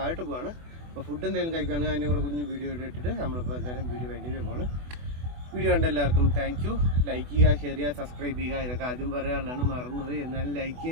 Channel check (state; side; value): late; left; 24 ms